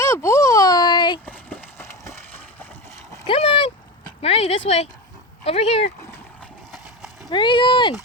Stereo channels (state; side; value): normal; both; correlation 0.22